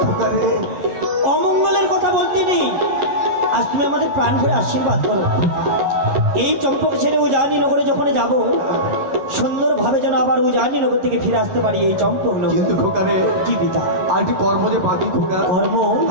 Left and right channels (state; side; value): late; left; 11 ms